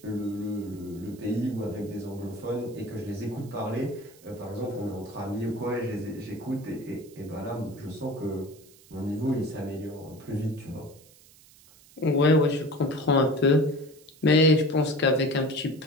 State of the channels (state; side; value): noise; right; hiss, 25 dB below the sound